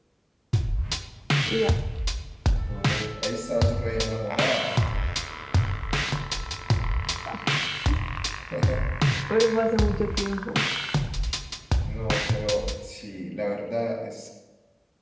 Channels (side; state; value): both; identical; correlation 1.00